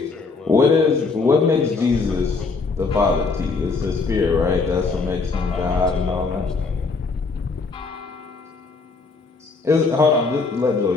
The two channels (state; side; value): quieter; right; 4.2 dB